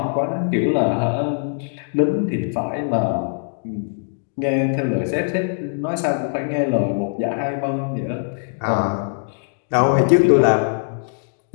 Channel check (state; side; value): silent; right; digital silence